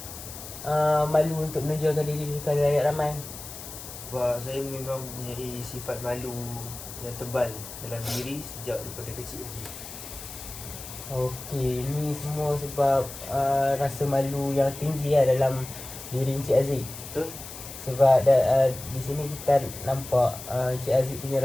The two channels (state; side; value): noise; left; hiss, 12 dB below the sound